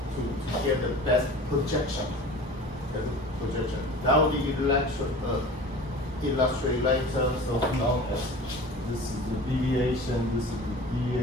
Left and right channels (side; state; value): both; normal; correlation 0.39